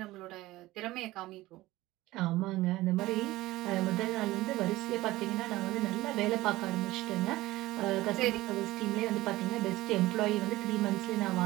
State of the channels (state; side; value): quieter; left; 17.9 dB